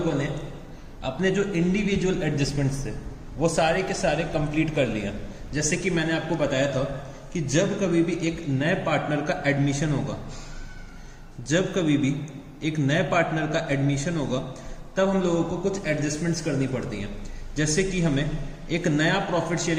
ने अपने जो इंडिविजुअल एडजस्टमेंट्स थे वो सारे के सारे कंप्लीट कर लिया। जैसे कि मैंने आपको बताया था कि जब कभी भी एक नए पार्टनर का एडमिशन होगा, जब कभी भी एक नए पार्टनर का एडमिशन होगा तब हम लोगों को कुछ एडजस्टमेंट्स करनी पड़ती हैं। जैसे कि हमें एक नया प्रॉफिट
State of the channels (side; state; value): both; identical; correlation 1.00